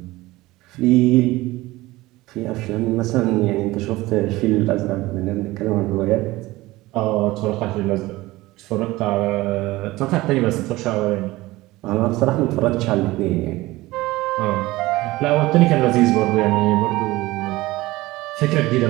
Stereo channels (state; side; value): quieter; left; 19.1 dB